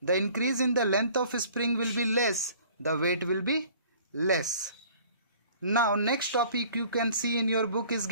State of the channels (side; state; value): both; inverted; correlation -0.52